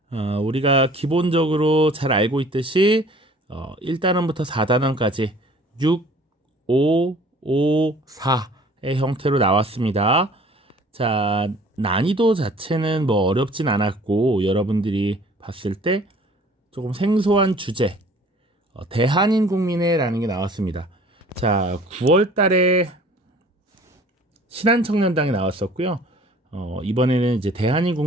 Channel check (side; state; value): both; normal; correlation 0.51